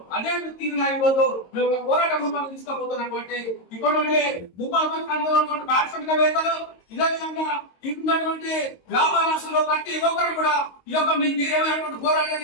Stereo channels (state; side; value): late; right; 22 ms